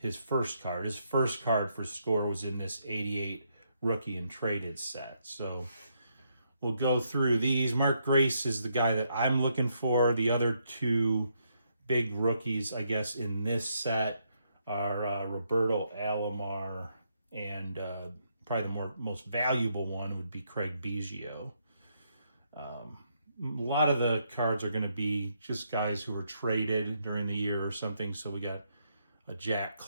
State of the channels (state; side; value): inverted; both; correlation -0.77